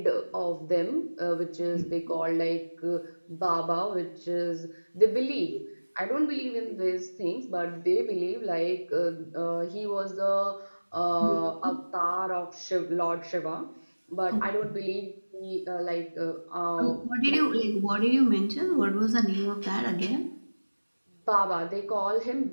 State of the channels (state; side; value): inverted; both; correlation -1.00